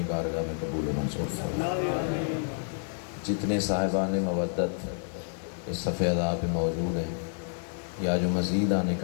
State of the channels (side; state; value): right; silent; digital silence